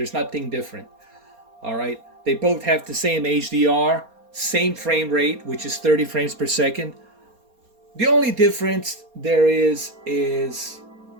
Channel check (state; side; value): late; left; 4.3 ms